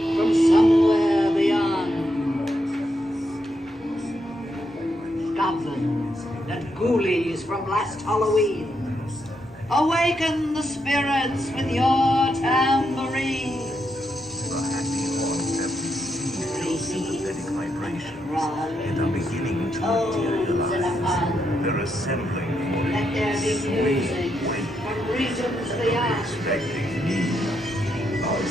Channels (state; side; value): normal; both; correlation 0.81